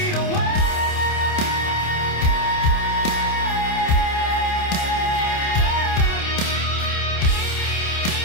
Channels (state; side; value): late; right; 28 ms